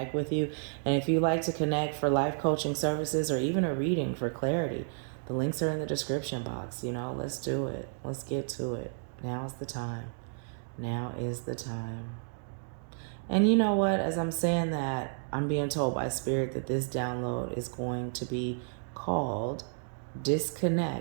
with you. And if you like to connect for life coaching services or even a reading for clarity, the links are in the description box. You know, let's do it. Let's get to it. Now is the time. Now is the time. And you know what? As I'm saying that, I'm being told by Spirit that this download is going to be called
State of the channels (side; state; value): left; silent; digital silence